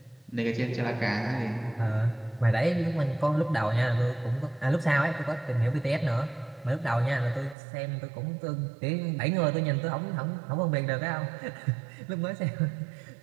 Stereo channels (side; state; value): left; drops out; at 7.6 s